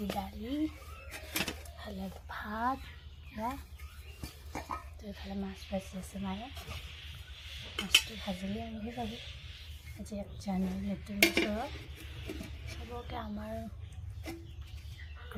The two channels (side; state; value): both; identical; correlation 1.00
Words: দালি ভালে ভাত এইফালে মাছ ভাজি আছে মায়ে মাছটো ভাজিলে আনিব যাব আজি 1 জানুৱাৰী নতুন বছৰত চবকে আমাৰ